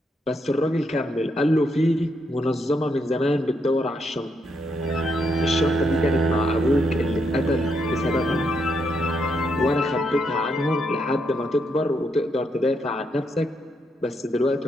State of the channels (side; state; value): both; normal; correlation 0.78